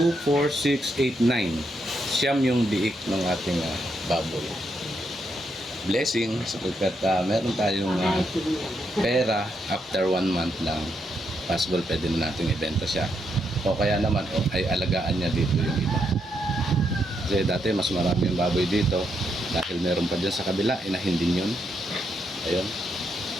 4, 6, 8, 9. Siyam yung biik ng ating baboy. Blessing sapagkat meron tayong pera after 1 month lang. Possible pwede na natin ibenta siya. O kaya naman ay alagaan niya dito yung iba. Kasi dati mas marami yung baboy dito. Dahil meron pa dyan sa kabila, inahin din yun. Ayun.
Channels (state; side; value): normal; both; correlation 0.79